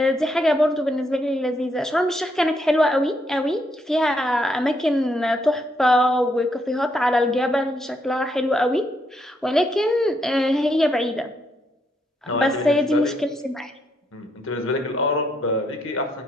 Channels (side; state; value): both; normal; correlation 0.76